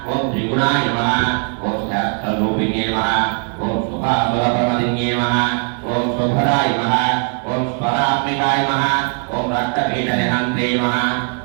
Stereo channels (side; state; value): left; quieter; 39.7 dB